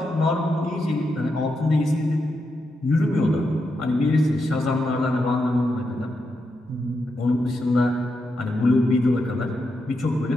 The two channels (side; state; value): both; normal; correlation 0.85